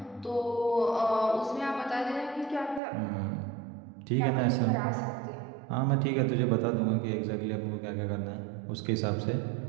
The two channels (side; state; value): left; drops out; at 2.8 s